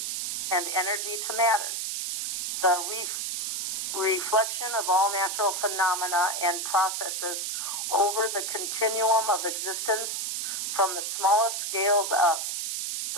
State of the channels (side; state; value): right; noise; hiss, 2 dB below the sound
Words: and energy to matter. The reflection of all natural phenomena and processes over the continuum of existence from the smallest scales up,